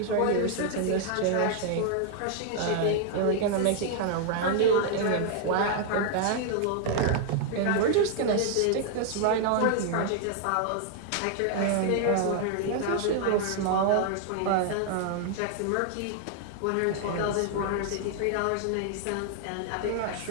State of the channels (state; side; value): different; both; correlation 0.00